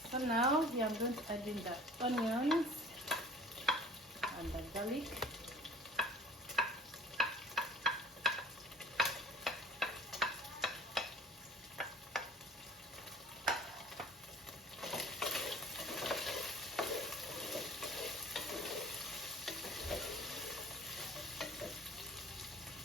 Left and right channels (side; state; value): both; normal; correlation 0.47